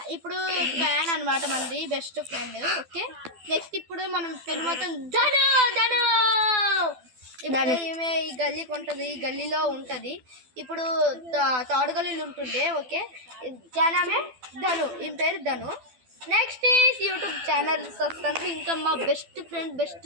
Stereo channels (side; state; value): left; late; 12 ms